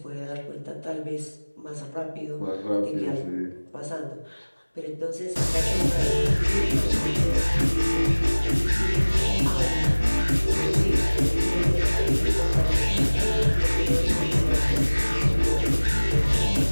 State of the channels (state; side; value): inverted; both; correlation -1.00